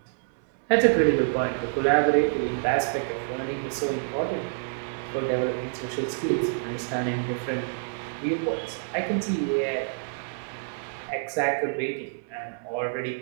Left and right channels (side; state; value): left; silent; 60 dB below the other